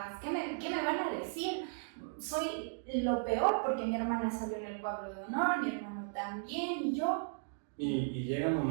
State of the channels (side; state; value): left; silent; digital silence